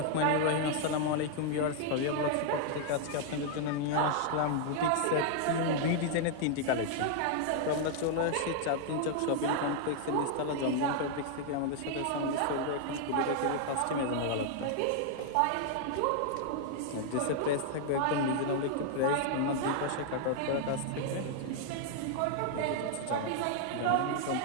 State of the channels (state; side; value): different; both; correlation 0.00